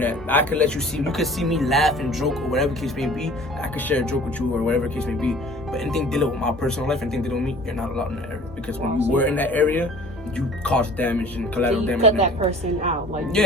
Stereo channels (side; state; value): both; normal; correlation 0.47